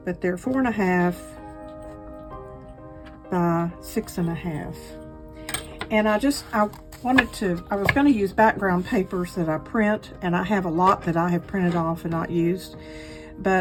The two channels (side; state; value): both; identical; correlation 1.00